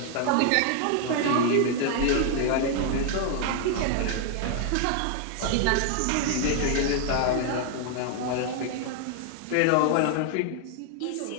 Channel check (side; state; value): both; different; correlation 0.00